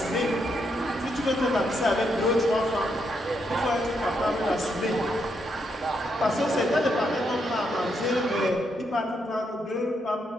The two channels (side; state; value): both; normal; correlation 0.79